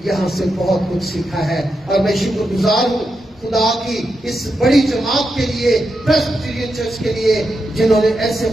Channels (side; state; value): both; normal; correlation 0.86